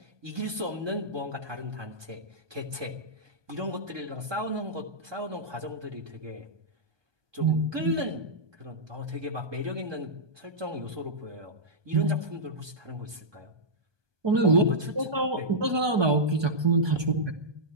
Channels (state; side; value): late; left; 1.2 ms